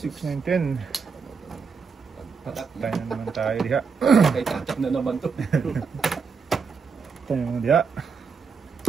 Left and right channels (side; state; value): left; quieter; 5.5 dB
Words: 9, 10. Patat Tayo na naman tayo diha. Kay tatak na naman to. Tayo naman diha.